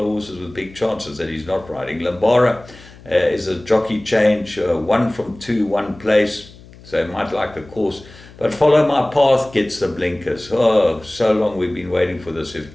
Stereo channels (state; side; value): noise; left; hum, 21 dB below the sound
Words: of horses with big chances that he's not riding. Limbara is a jockey change, 1 from 2, 1 place, so he might like the course. But Follow My Path gets the blinkers. Oh, so long we've been waiting for this.